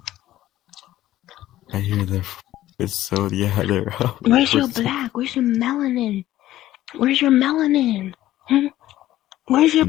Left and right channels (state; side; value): quieter; right; 14.3 dB